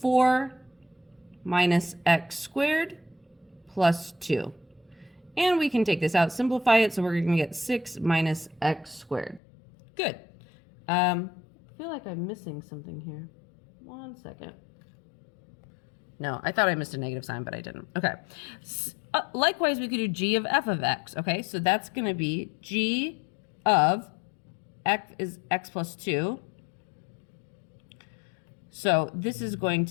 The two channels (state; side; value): drops out; right; at 9.4 s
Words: 4 minus x squared plus 2. And we can take this out, simplify it, so we're going to get 6 minus x squared. Good. I feel like I'm missing something here. 1 second. No, I thought I missed a negative sign, but I didn't. Okay. Likewise, we could do g of f of x. Okay, so that's going to be g of x is x plus 2. So this is going